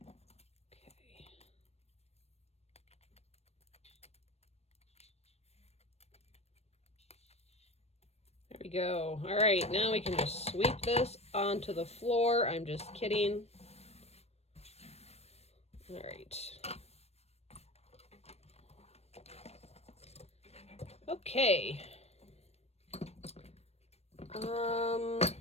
Okay. There we go. All right, now we can just sweep this onto the floor. I'm just kidding. All right. Okay.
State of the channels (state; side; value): late; right; 0.31 ms